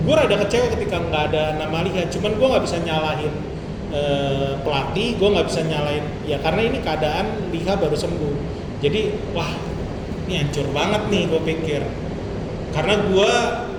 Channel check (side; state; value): both; identical; correlation 1.00